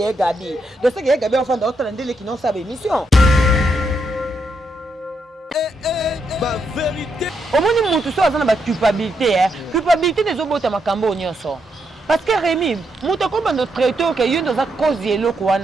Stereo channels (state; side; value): normal; both; correlation 0.80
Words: est gabi. De ce qui est gabé enfant d'autres landé qui non ça émission. Vérité. Au moins nous tout ça dans la culpabilité hein. Culpabilité des obota makambo nyonso. Parce que Rémi, muto ko bando traiteur que yo dans cause yelo